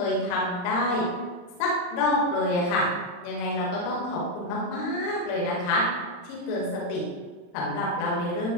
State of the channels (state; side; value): late; right; 40 ms